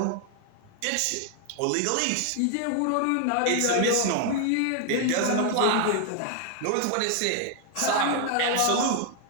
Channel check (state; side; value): different; both; correlation 0.00